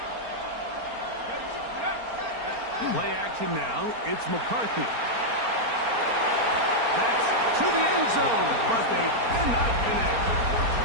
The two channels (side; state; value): left; late; 4.3 ms